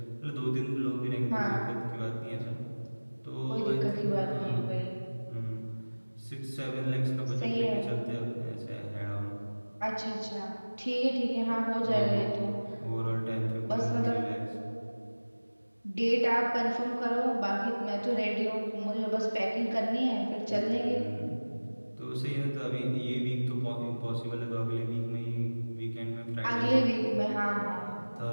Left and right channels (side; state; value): both; inverted; correlation -1.00